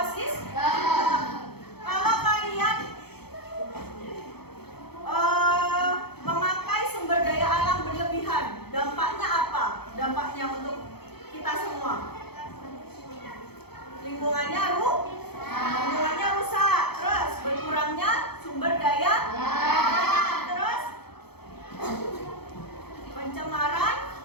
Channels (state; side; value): late; right; 0.96 ms